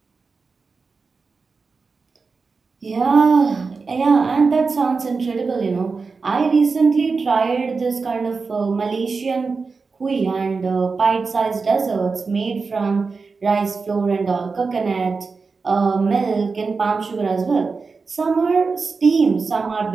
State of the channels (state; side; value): quieter; left; 4.5 dB